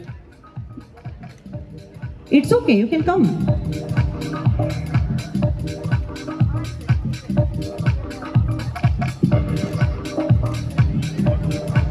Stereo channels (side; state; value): both; identical; correlation 1.00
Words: It's okay, you can come.